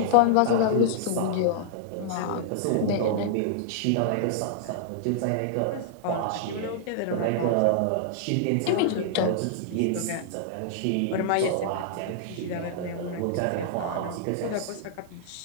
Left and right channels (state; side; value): different; both; correlation -0.01